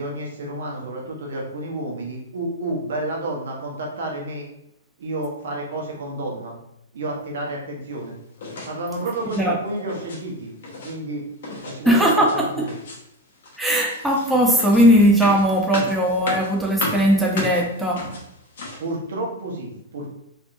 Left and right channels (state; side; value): normal; both; correlation 0.30